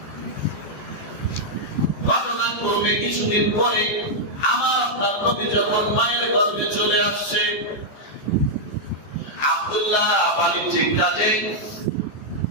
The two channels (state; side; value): late; right; 14 ms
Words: ঘটনাক্রমে কিছুদিন পরে আমার আপনার নবী যখন মায়ের গর্ভে চলে আসছে, আব্দুল্লাহ বাণিজ্যিক কাজে